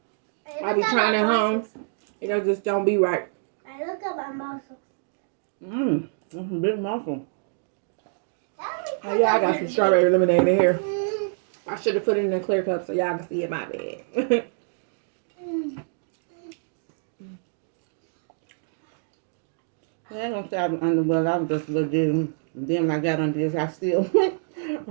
I be trying at home. It just don't be right. I look at my muscles. That's a big muffin. Oh yeah, I got some strawberry lemonade in here. I should have put it in a clear cup so y'all can see it. My bad. I ain't gonna say I was underwhelmed. I was just legit. And then when I got on this, I still got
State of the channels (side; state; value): left; silent; digital silence